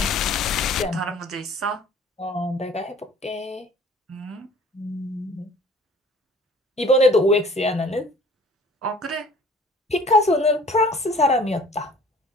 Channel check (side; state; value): both; normal; correlation 0.51